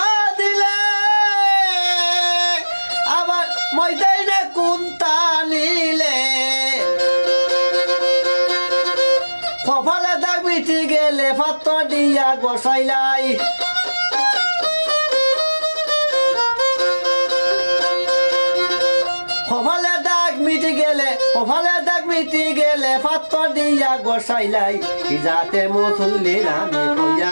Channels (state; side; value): inverted; both; correlation -1.00